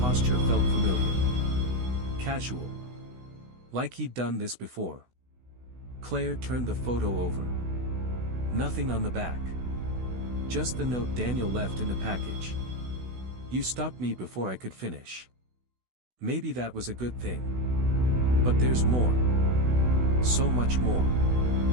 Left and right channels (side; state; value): left; late; 16 ms